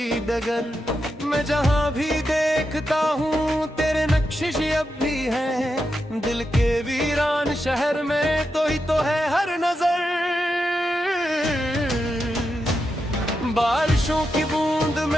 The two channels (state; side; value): normal; both; correlation 0.87